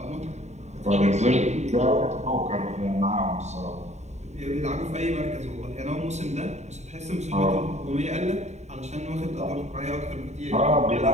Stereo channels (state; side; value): late; left; 0.33 ms